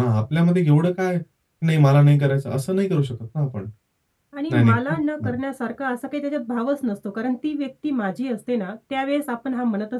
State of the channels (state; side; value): identical; both; correlation 1.00